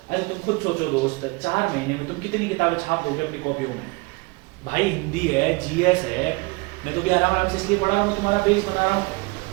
अरे तुम खुद सोचो दोस्त, 4 महीने में तुम कितनी किताबें छाप दोगे अपनी कॉपियों में? भाई हिंदी है, जीएस है, मैं तो भी आराम से इसलिए पढ़ा रहा हूँ, तुम्हारा बेस बना रहा हूँ।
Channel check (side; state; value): left; quieter; 26.3 dB